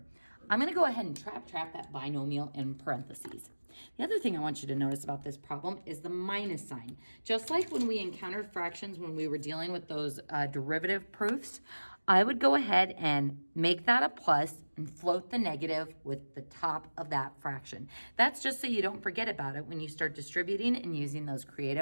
I'm gonna go ahead and trap that binomial in parentheses. The other thing I want you to notice about this problem is the minus sign. Just like when we encountered fractions when we were dealing with those derivative proofs, I would go ahead and make that a plus and float the negative with the top of that fraction. That's just so you don't forget about it when you start distributing and using those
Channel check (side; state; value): both; inverted; correlation -1.00